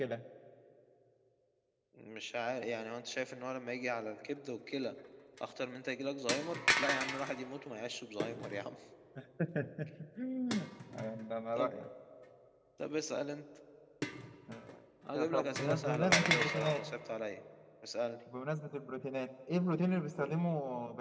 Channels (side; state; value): both; identical; correlation 1.00